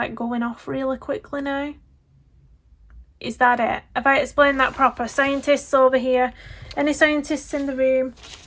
going off really quickly now. Is that it? Have I explained that proper? Scientists over here? Any scientists in the room?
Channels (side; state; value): both; identical; correlation 1.00